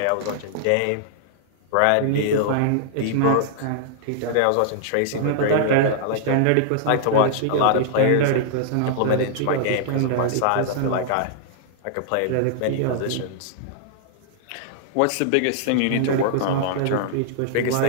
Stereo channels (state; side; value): different; both; correlation -0.01